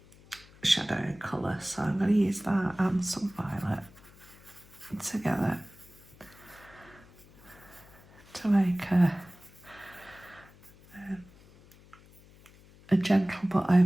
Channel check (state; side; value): noise; left; hum, 24 dB below the sound